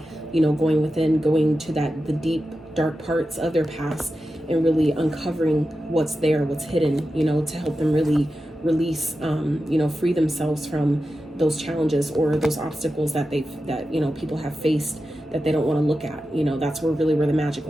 you know, going within, going to the deep dark parts of their past and really uncovering what's there, what's hidden, you know, to help them really release, you know, free themselves from those challenges or those obstacles that you know, people have faced that they don't want to look at. You know, that's where the magic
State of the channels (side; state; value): both; normal; correlation 0.92